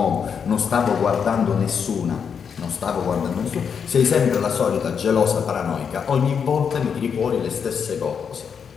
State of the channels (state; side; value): quieter; right; 6.8 dB